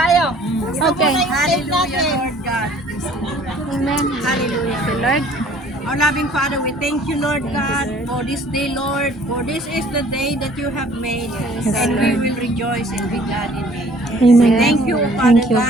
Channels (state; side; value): normal; both; correlation 0.54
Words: Okay. Hallelujah, Lord God. Amen. Hallelujah. Lord. Our loving Father, we thank you, Lord God, for this day, Lord. For this is the day that you have made, and we will rejoice and be glad in it. Amen. Thank you, Father